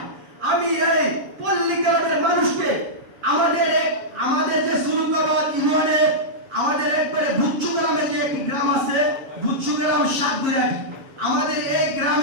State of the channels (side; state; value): left; late; 7.4 ms